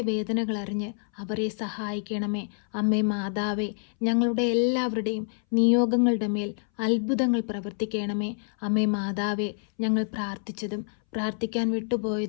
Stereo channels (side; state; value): right; silent; 60 dB below the other